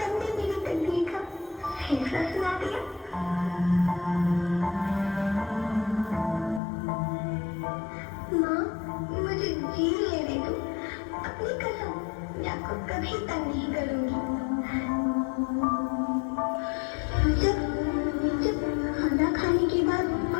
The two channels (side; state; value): right; drops out; at 6.6 s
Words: मेरी तकदीर का फैसला सुना दिया। माँ, मुझे जी लेने दो। अपनी कसम, मैं आपको कभी तंग नहीं करूंगी। जब जब खाना खाने के बाद